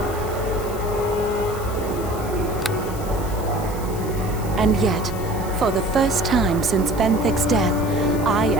And yet, for the first time since Venthic's death, I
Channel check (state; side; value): noise; left; hiss, 15 dB below the sound